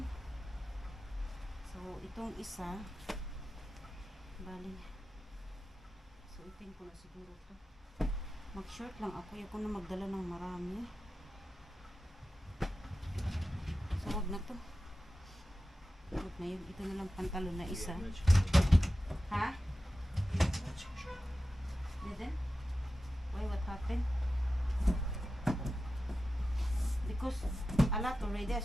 So itong isa, bali suotin ko na siguro to. Mag-short lang ako. Ayoko na magdala ng marami. So wag na to. Wag na yun. Ito na lang pantalon na isa. Ha? Didn't? Why? What happened? Because a lot already. I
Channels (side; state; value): both; normal; correlation 0.93